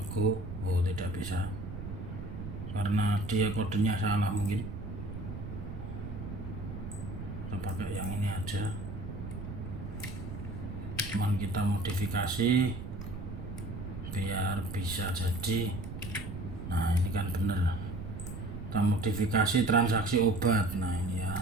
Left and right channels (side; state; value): right; noise; rumble, 8 dB below the sound